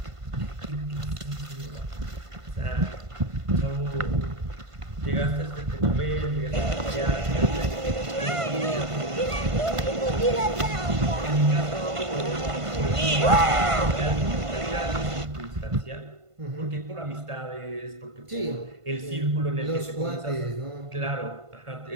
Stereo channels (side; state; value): left; late; 1.5 ms